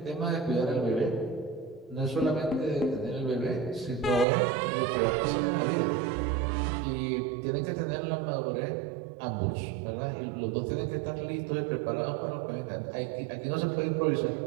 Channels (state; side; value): drops out; left; at 4.2 s